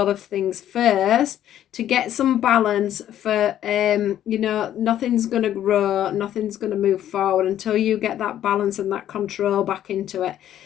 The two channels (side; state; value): right; quieter; 11.4 dB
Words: of things first to get some balance for nothing's going to grow, nothing's going to move forward until you get that balance and that control back into it,